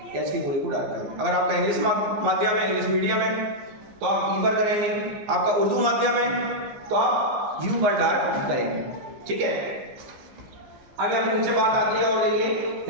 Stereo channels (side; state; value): left; late; 15 ms